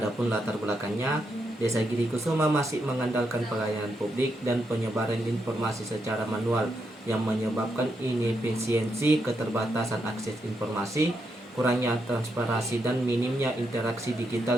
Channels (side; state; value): both; normal; correlation 0.81